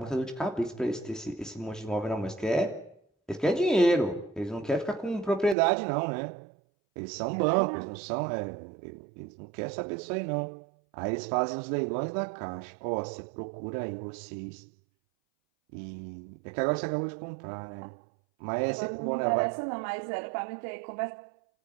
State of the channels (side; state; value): left; drops out; at 5.6 s